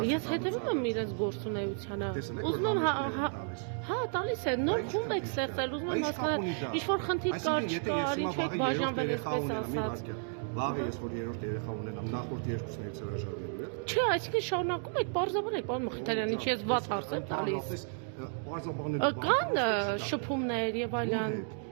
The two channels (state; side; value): silent; left; 55 dB below the other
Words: հետևում եմ իրենց գործունեությանը։ Ուզում եմ հա, տալիս է, նոր խումբ եք ստեղծել, ուզում եմ հասկանալ, ինչ-որ խնդիր կար, չկար, ինչ եք բաժանվել, այսպես ասած։ Լավ է, ես որ երրորդ երեխա ունենամ, նախորդ երկուսներից հրաժարվելու է։ Չէ, այսինքն շարունակում եք, պարզաբանեք, պարոն Մխիթարյան, ինչ ես վատ հարց եմ տալիս։ Կան շփումներ եւ այլն։